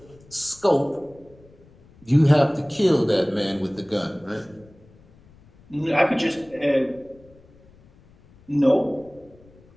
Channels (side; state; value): left; noise; rumble, 27 dB below the sound